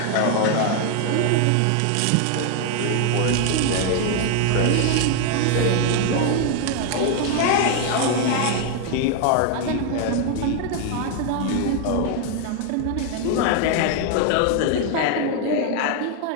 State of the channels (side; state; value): both; different; correlation 0.00